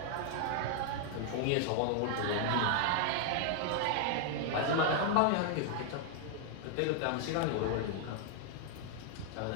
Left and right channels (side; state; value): both; different; correlation 0.00